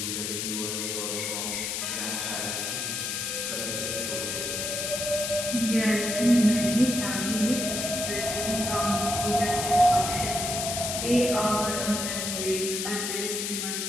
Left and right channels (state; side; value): noise; left; hiss, 2 dB below the sound